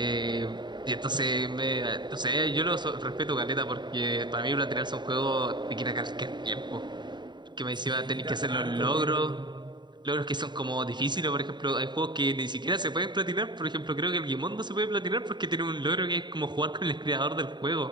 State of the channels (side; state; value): left; late; 0.22 ms